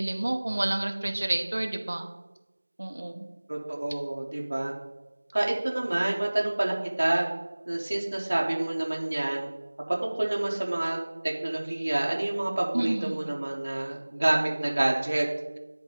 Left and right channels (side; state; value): both; inverted; correlation -1.00